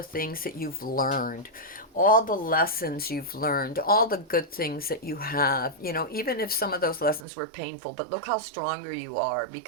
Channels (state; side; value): drops out; left; at 7.2 s